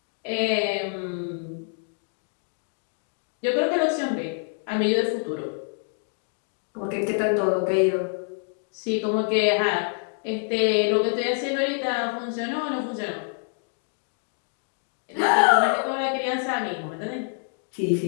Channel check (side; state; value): right; silent; 59 dB below the other